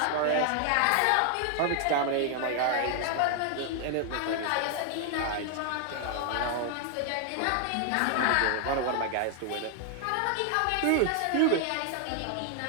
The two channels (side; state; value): both; different; correlation 0.00